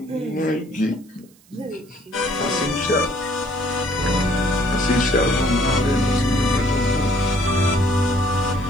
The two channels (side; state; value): right; noise; hiss, 29 dB below the sound